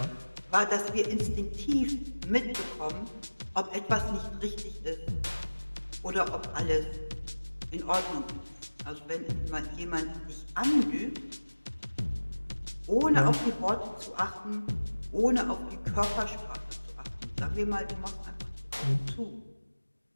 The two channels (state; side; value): inverted; both; correlation -1.00